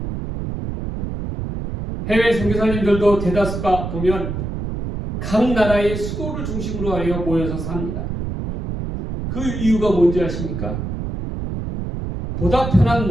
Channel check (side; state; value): right; noise; rumble, 5 dB below the sound